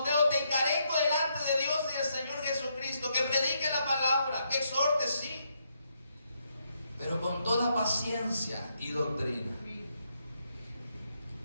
te encarezco delante de Dios y del Señor Jesucristo, que predique la palabra, que exhorte, sí, pero con toda paciencia y doctrina.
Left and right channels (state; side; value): inverted; both; correlation -0.78